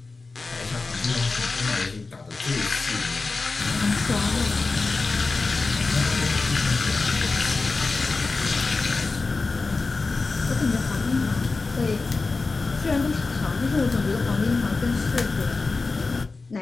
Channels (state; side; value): quieter; right; 3.9 dB